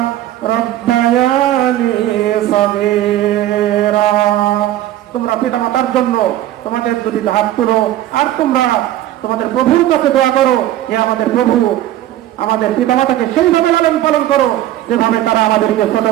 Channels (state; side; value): quieter; left; 13.5 dB